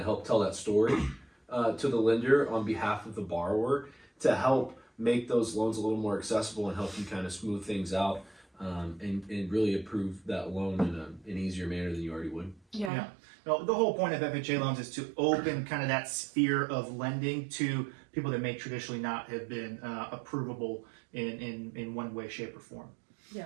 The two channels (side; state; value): left; drops out; at 12.9 s